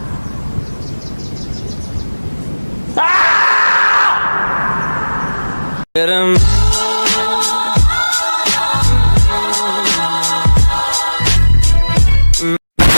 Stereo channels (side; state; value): both; inverted; correlation -1.00